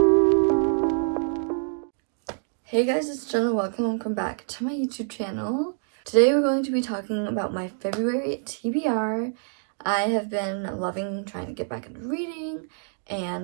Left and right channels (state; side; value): silent; left; 60 dB below the other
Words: Hey guys, it's Jenna. Welcome back to my YouTube channel. Today we're going to be talking about my February TBR. I have been loving trying to get back into reading